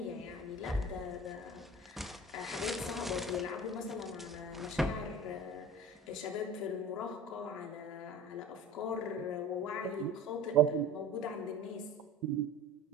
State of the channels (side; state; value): both; normal; correlation 0.39